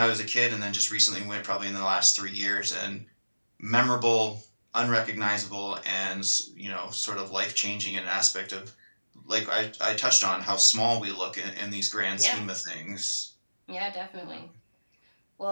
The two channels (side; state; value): both; inverted; correlation -1.00